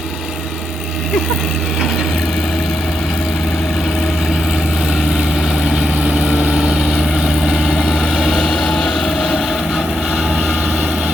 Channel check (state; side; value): normal; both; correlation 0.83